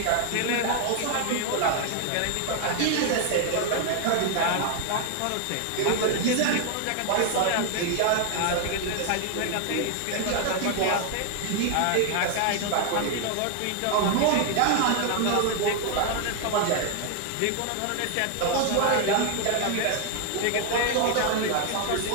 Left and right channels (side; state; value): both; different; correlation 0.00